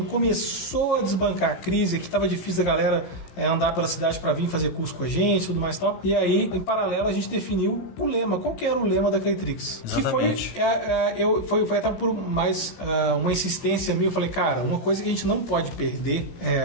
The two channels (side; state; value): right; late; 16 ms